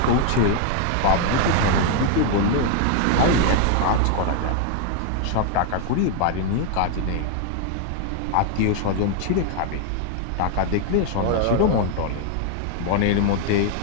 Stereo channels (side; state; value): both; different; correlation 0.00